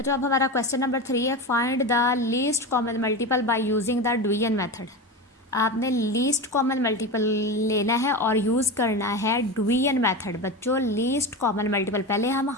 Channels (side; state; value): both; normal; correlation 0.23